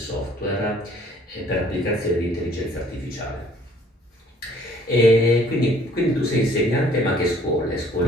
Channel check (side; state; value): both; normal; correlation 0.58